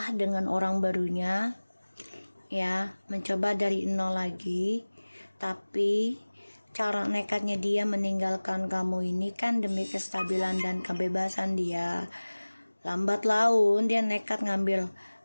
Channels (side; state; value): both; inverted; correlation -1.00